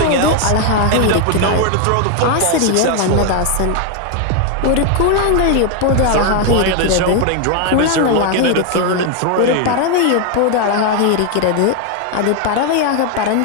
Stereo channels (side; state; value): both; different; correlation 0.01